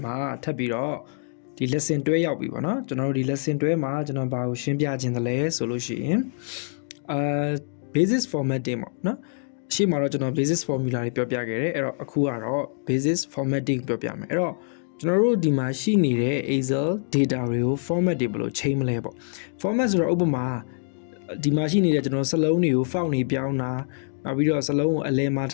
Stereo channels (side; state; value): right; silent; digital silence